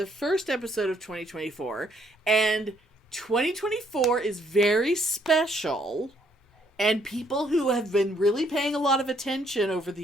first episode of 2024. And 2024 is very special, and people who have been really paying a lot of attention over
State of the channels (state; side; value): normal; both; correlation 0.68